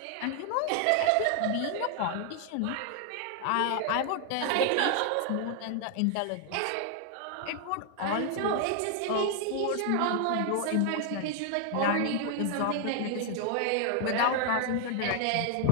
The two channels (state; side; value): different; both; correlation 0.00